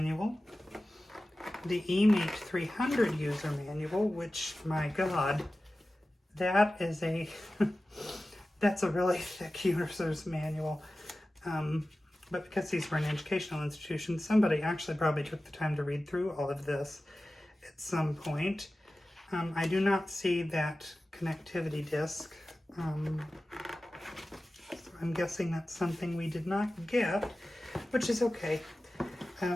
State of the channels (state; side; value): normal; both; correlation 0.95